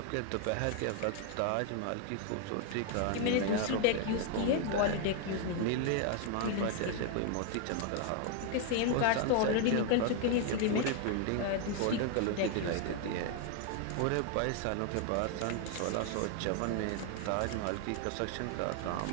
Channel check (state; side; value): different; both; correlation 0.00